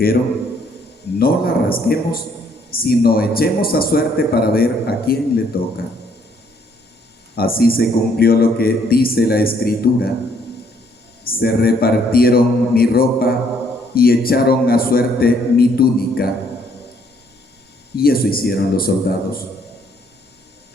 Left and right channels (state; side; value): normal; both; correlation 0.67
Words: «No la rasguemos, sino echemos a suerte para ver a quién le toca». Así se cumplió lo que dice la Escritura: «Se repartieron mi ropa y echaron a suerte mi túnica». Y eso hicieron los soldados.